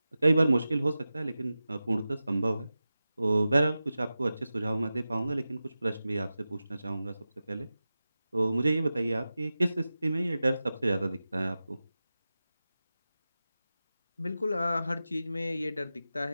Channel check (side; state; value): both; inverted; correlation -0.94